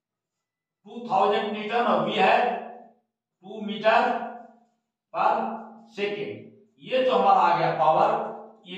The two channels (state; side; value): identical; both; correlation 1.00